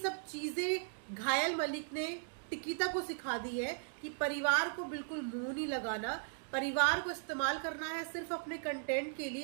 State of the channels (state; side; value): silent; left; digital silence